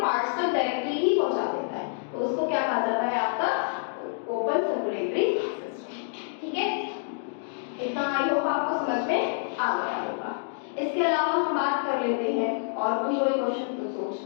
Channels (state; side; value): silent; right; digital silence